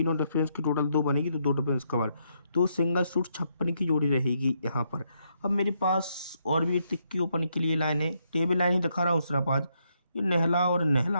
डिफरेंस की टोटल 2 बनेगी, तो 2 डिफरेंस कवर। तो सिंगल सूट 56 की जोड़ी रहेगी यहाँ पर। अब मेरे पास और भी तिक्की ओपन के लिए लाइन है। टेबल लाइन ही दिखा रहा हूँ सिर्फ आज। ये नहला और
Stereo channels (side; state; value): both; inverted; correlation -0.77